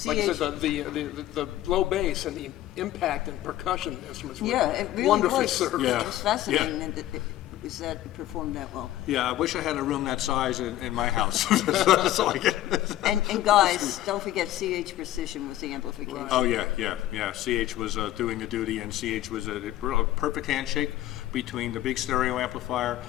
like I CH said, the low bass and the impact and percussion instruments were Yeah, it really wonderfully was. served. Yeah. It was fascinating that it performed that well. Yeah, I wish I had a room that size in my house. So I get. And guys, don't forget CH Precision was the amplification. Oh yeah. CH was doing the duty, and CH was a perfect handshake between the big stereo amplifier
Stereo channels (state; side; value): quieter; right; 14.2 dB